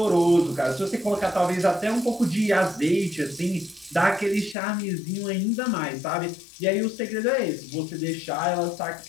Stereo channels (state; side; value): drops out; right; at 4.5 s